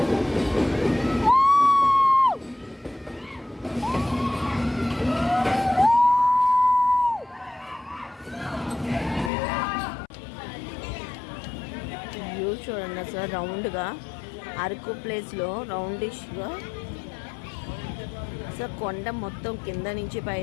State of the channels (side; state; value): right; drops out; at 9.3 s